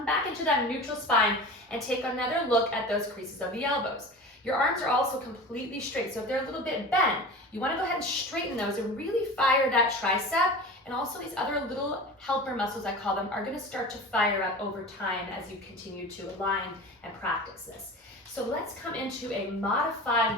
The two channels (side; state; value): both; normal; correlation 0.34